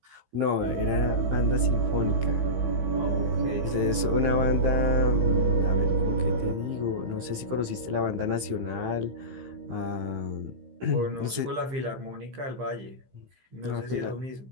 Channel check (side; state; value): left; late; 15 ms